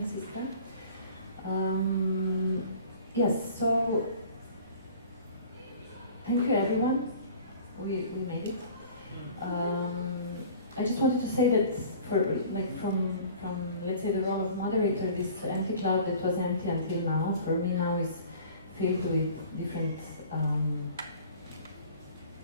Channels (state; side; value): inverted; both; correlation -0.46